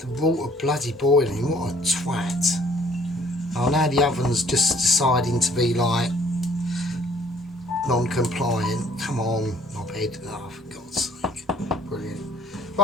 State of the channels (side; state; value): both; normal; correlation 0.58